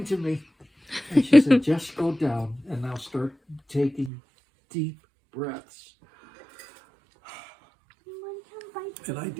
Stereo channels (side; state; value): left; drops out; at 4.1 s